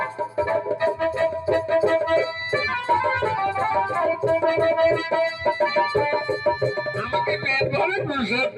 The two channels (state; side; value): identical; both; correlation 1.00